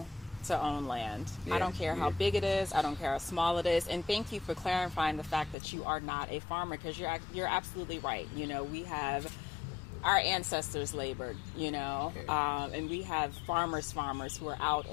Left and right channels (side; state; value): right; drops out; at 5.6 s